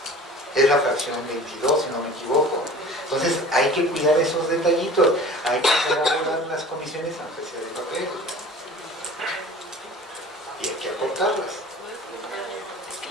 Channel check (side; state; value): both; normal; correlation 0.42